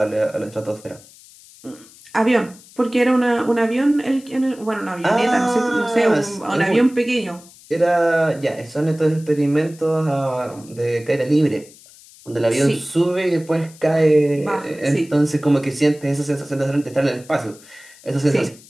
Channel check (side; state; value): left; noise; hiss, 23 dB below the sound